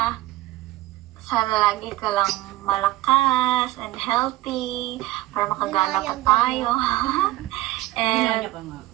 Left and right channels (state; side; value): quieter; left; 17.1 dB